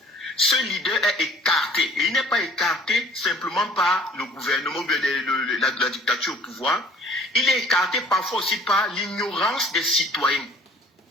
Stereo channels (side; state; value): both; normal; correlation 0.53